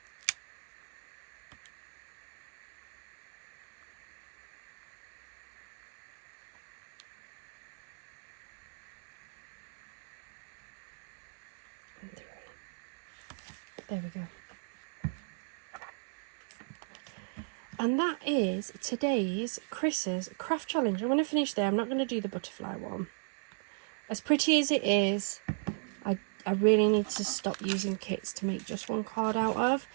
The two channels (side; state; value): left; silent; 54 dB below the other